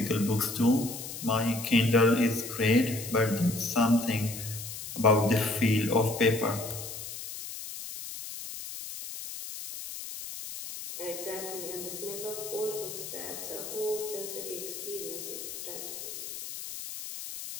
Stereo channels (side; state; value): left; noise; hiss, 9 dB below the sound